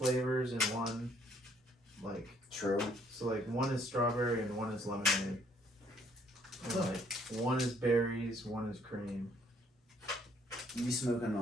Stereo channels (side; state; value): both; normal; correlation 0.65